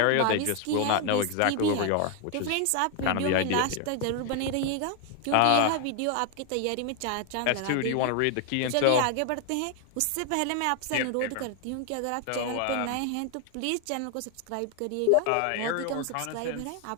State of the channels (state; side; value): different; both; correlation 0.00